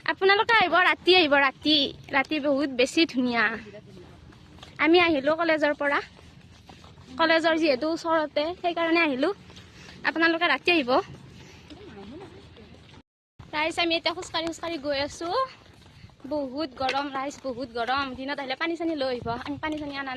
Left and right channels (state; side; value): identical; both; correlation 1.00